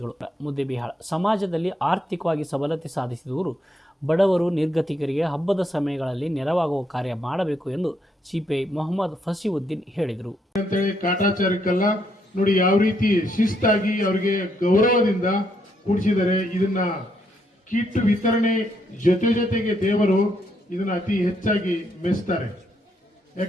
ಮುದ್ದೇಬಿಹಾಳ ಸಮಾಜದಲ್ಲಿ ಆರ್ಥಿಕವಾಗಿ ಸಬಲತೆ ಸಾಧಿಸಿದವರು ಬಡವರು ನಿರ್ಗತಿಕರಿಗೆ ಹಬ್ಬದ ಸಮಯಗಳಲ್ಲಿ ನೆರವಾಗುವ ಕಾರ್ಯ ಮಾಡಬೇಕು ಎಂದು ಸಿಪಿಐ ಮೊಹಮ್ಮದ್ ಫಸೀವುದ್ದೀನ್ ಹೇಳಿದರು. ಕಾಟಾಚಾರಕ್ಕೆಲ್ಲ ನೋಡಿ ಯಾವ ರೀತಿ ಶಿಸ್ತಾಗಿ ಅವರಿಗೆ ಗೌರವದಿಂದ ಕೂಡಿಸಿದರೆ ಇದನ್ನ ಕಿಟ್ ವಿತರಣೆ ಜೊತೆಗೆ ದೇವರು ಇದನ್ನ ಅತಿ ಹೆಚ್ಚಾಗಿ ಮೆಚ್ತಾರೆ.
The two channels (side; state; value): both; normal; correlation 0.75